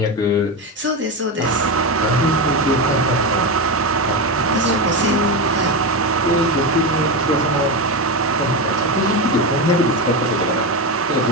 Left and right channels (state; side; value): normal; both; correlation 0.15